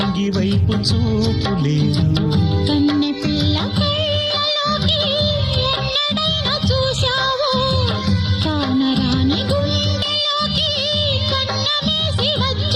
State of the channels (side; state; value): both; identical; correlation 1.00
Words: వైపు చూపు లేదు.